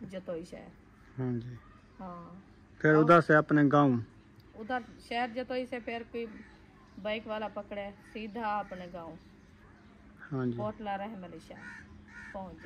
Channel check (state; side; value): identical; both; correlation 1.00